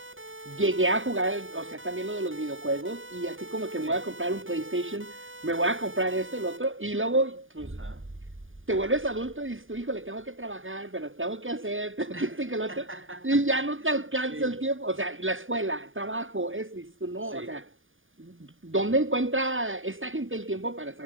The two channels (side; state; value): left; late; 0.58 ms